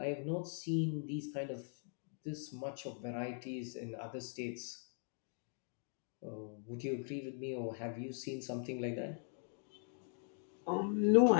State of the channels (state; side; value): silent; right; 51 dB below the other